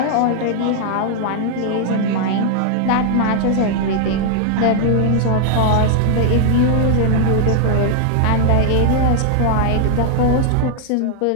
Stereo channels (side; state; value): both; different; correlation 0.00